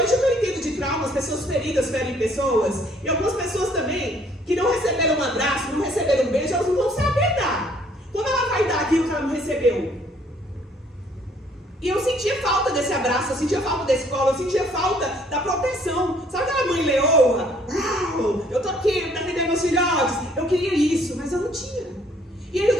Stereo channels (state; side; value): normal; both; correlation 0.62